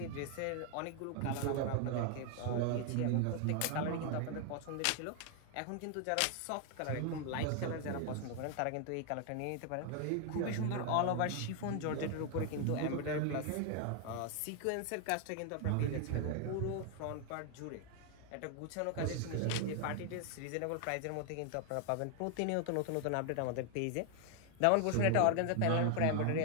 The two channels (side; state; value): both; different; correlation 0.00